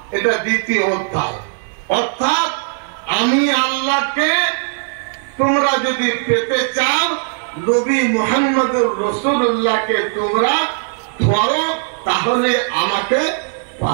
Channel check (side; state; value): left; silent; 60 dB below the other